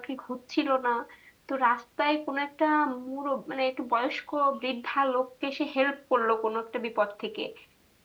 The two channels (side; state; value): both; identical; correlation 1.00